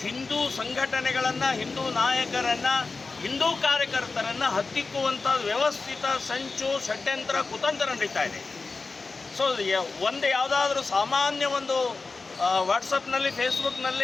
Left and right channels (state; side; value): quieter; right; 4.0 dB